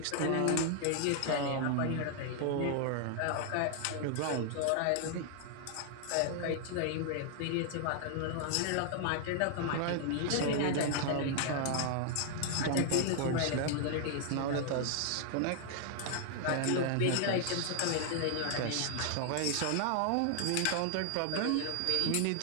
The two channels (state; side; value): different; both; correlation 0.00